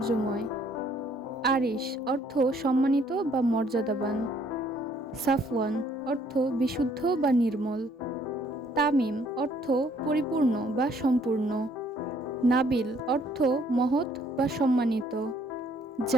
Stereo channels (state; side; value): normal; both; correlation 0.63